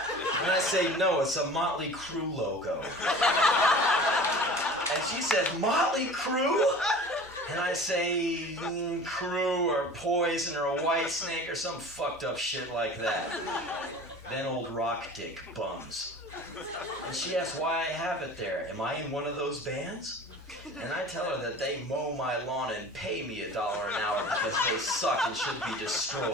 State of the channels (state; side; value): normal; both; correlation 0.40